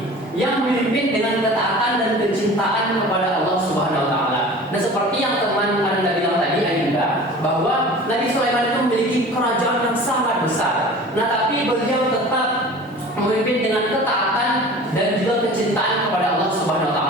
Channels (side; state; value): both; normal; correlation 0.41